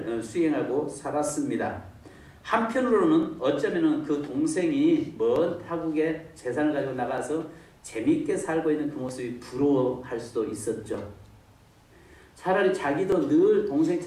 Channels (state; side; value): identical; both; correlation 1.00